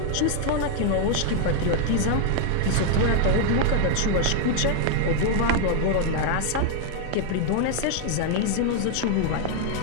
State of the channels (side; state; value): both; different; correlation 0.00